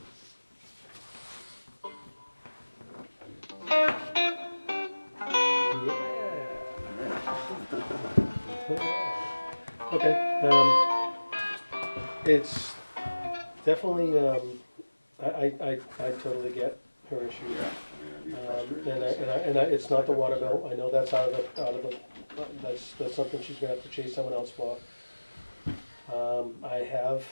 Okay. It's definitely. I totally get her issue. It's not the water bill. I know that's out of the. That's something she's gonna have to chase someone else for. I have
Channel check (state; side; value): inverted; both; correlation -1.00